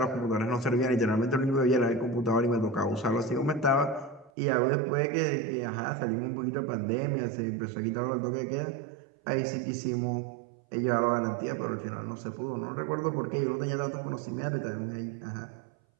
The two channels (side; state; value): left; drops out; at 4.3 s